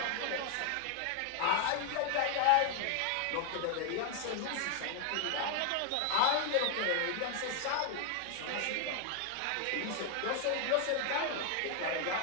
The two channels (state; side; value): different; both; correlation 0.00